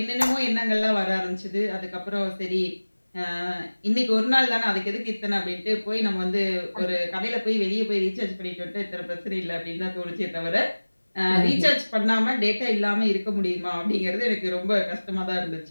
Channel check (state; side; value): inverted; both; correlation -1.00